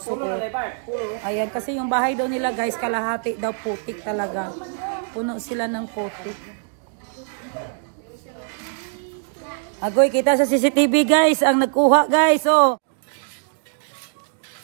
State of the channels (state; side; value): silent; left; 61 dB below the other